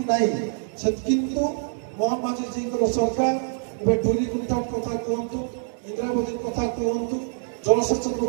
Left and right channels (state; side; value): silent; left; digital silence